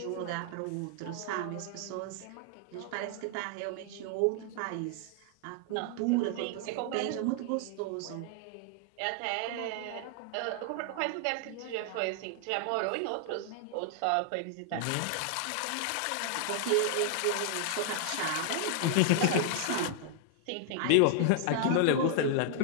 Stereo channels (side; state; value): both; different; correlation 0.00